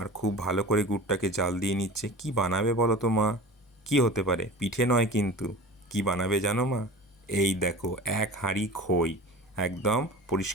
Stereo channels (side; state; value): both; normal; correlation 0.36